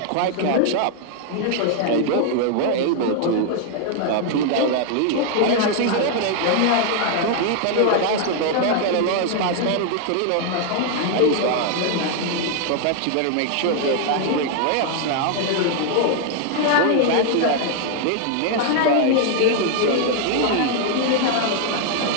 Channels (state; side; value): different; both; correlation 0.00